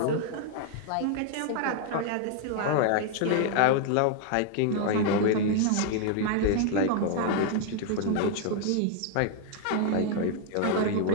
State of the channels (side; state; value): both; different; correlation 0.00